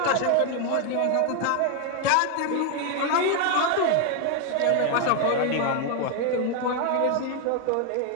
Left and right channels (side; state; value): both; different; correlation 0.01